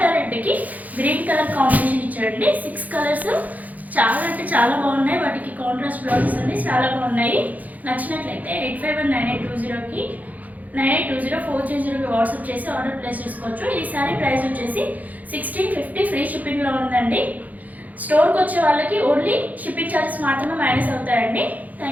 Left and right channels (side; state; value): left; late; 0.079 ms